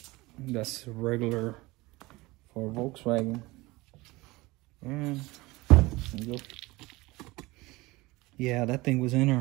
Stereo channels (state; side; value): quieter; left; 21.4 dB